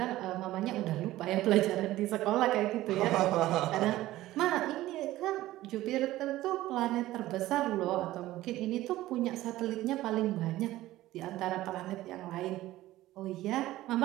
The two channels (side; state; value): left; quieter; 15.9 dB